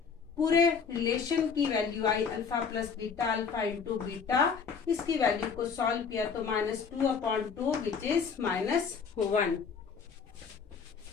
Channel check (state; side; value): quieter; right; 6.0 dB